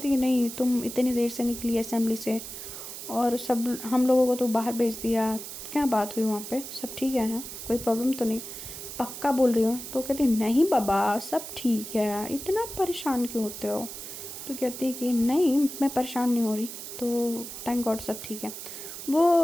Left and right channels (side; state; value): right; noise; hiss, 10 dB below the sound